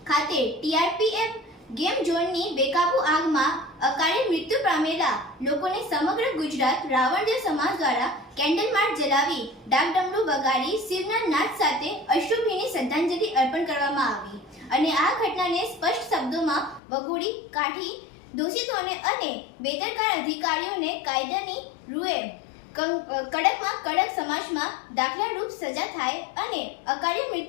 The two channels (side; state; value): right; drops out; at 16.8 s